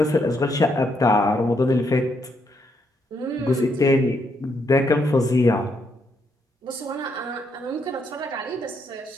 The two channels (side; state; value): both; normal; correlation 0.76